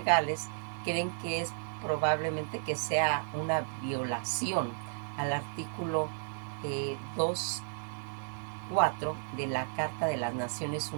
creen que es probablemente que sea una violación al artículo 2.4 de la Carta de las Naciones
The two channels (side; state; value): left; silent; 56 dB below the other